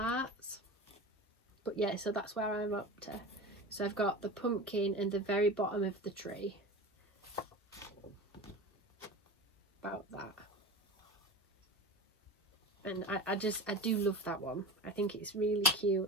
But yeah, so that's where I'm up to. So I've got the pumpkin and the very bottom of the tree. About that. And I do love that one. I think it's really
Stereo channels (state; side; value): normal; both; correlation 0.30